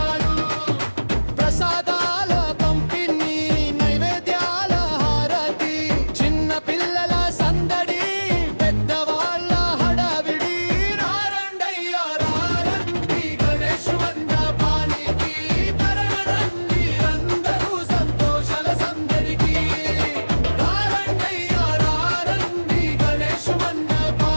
ప్రసాదాల పంపిణీ నైవేద్యాల హారతి చిన్న పిల్లల సందడి పెద్దవాళ్ళ హడావిడి రారండయ్యా రారండి గణేష్ మండపానికి తరగరండి అందరూ సంతోషాల సందడికి రారండయ్యా రారండి గణేష్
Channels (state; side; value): inverted; both; correlation -1.00